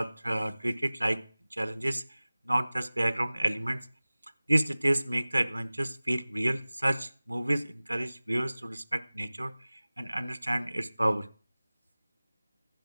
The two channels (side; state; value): both; inverted; correlation -0.99